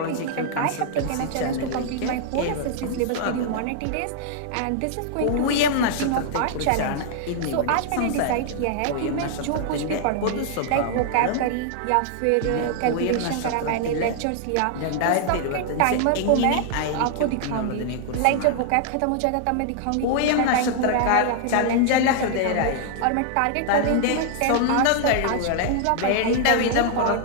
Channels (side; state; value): both; different; correlation -0.01